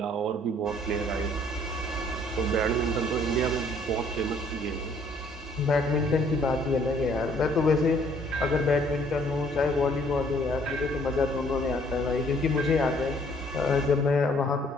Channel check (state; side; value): normal; both; correlation 0.61